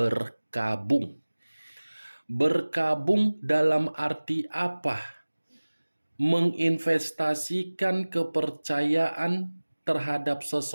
Berkabung dalam arti apa? Menginvestasikan kepercayaan terhadap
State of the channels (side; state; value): both; inverted; correlation -1.00